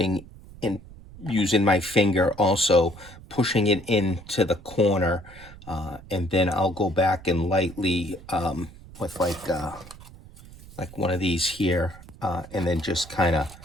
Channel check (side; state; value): right; noise; rumble, 19 dB below the sound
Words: in, using my finger, also pushing it into the corner, and then I'll go back and lightly with like one of these here, and then just kind of